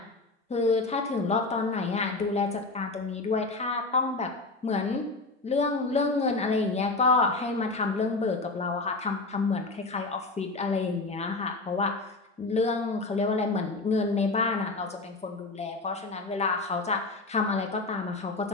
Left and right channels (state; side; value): quieter; right; 3.4 dB